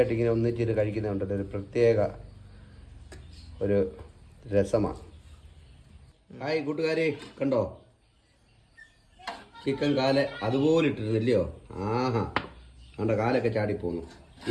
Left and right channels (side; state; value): both; identical; correlation 1.00